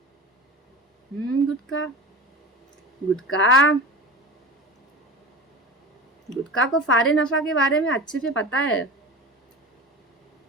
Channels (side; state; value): both; normal; correlation 0.32